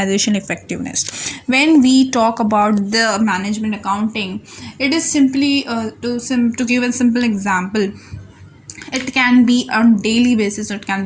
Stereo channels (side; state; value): both; identical; correlation 1.00